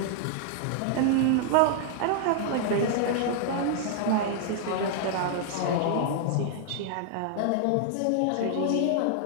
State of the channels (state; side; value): different; both; correlation 0.00